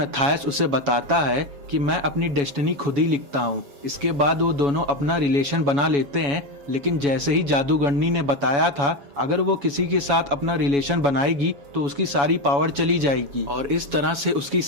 उसे बताता है कि मैं अपनी डेस्टिनी खुद ही लिखता हूँ। इसके बाद वो दोनों अपना रिलेशन बना लेते हैं, लेकिन जैसे ही जादूगरनी ने बताया था अगर वो किसी के साथ अपना रिलेशन बनाएगी तो उसकी सारी पावर चली जाएगी, और इस तरह से उसकी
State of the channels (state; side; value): late; left; 7.1 ms